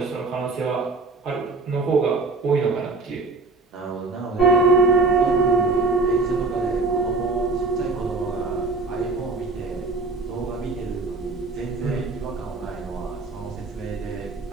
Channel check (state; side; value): quieter; left; 3.6 dB